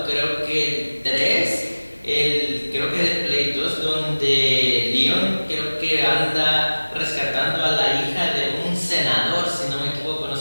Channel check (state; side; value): inverted; both; correlation -1.00